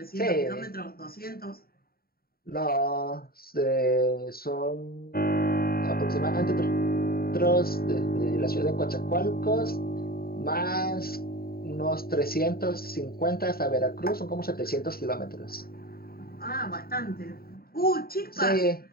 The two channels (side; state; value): right; late; 0.44 ms